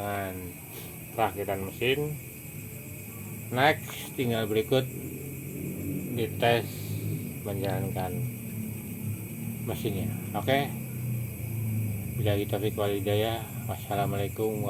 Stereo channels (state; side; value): identical; both; correlation 1.00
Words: perakitan mesin. Next, tinggal berikut dites menjalankan mesinnya. Oke, billahi taufiq wal hidayah. Wassalamualaikum